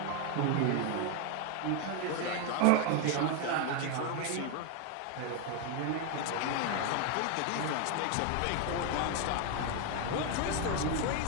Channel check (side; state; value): both; different; correlation 0.01